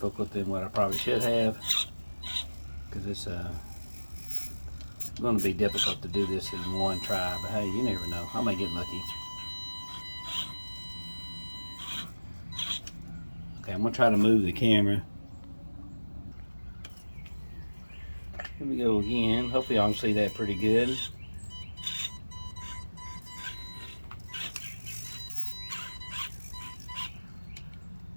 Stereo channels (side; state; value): both; inverted; correlation -1.00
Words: than what I probably should have, because it's going to be difficult to do this in one try. But hey, you never know. I may get lucky. Okay, I'm going to try to move the camera. Here we go again. Hopefully y'all can see that pretty good.